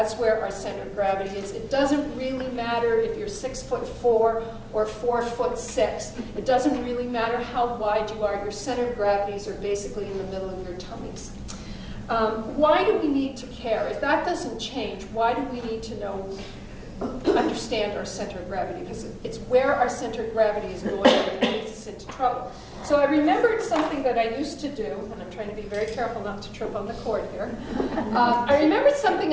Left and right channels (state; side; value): identical; both; correlation 1.00